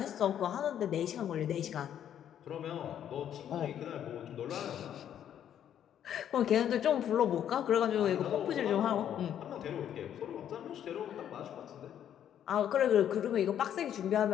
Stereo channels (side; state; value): right; quieter; 10.0 dB